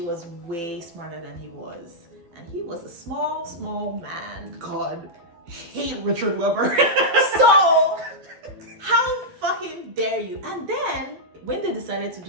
way smarter than he was. And he was a small man. God, hate Richard Weber. So, how fucking dare you? And then, when they decided to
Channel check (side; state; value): left; late; 12 ms